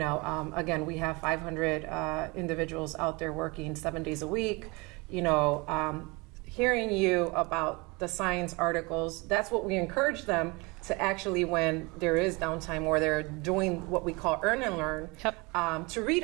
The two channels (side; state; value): left; quieter; 26.6 dB